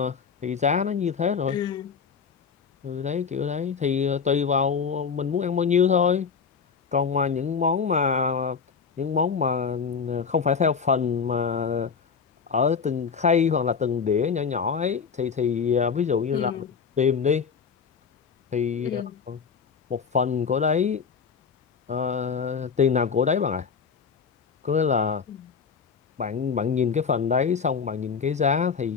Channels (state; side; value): quieter; right; 6.0 dB